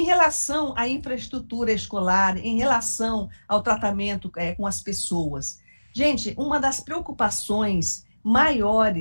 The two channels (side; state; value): both; inverted; correlation -1.00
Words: relação à infraestrutura escolar, em relação ao tratamento com as pessoas. Gente, uma das preocupações